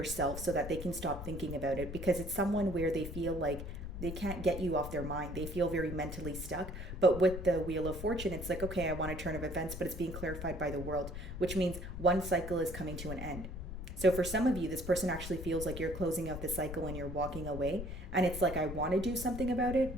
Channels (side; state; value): left; noise; rumble, 8 dB below the sound